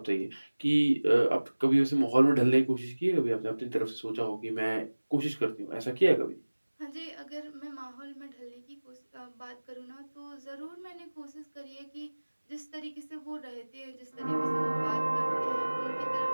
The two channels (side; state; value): both; inverted; correlation -1.00